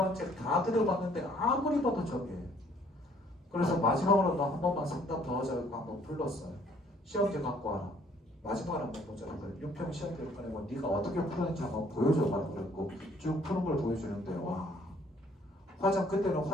책 다 들어봤는데 아무리 봐도 저게예요. 그래서 마지막으로 너 한 번만 상담 더 하자고 한번 불렀어요. 시험지 갖고 와라. 마지막으로 한번 보자. 6평 시험지를 꺼내고 네가 어떻게 푸는지 한번 보여줘가지고 그랬고 쭉 푸는 걸 보여주는데 와. 그때는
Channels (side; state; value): both; normal; correlation 0.61